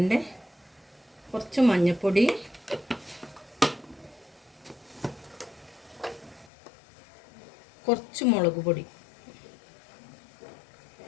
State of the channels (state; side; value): drops out; right; at 6.5 s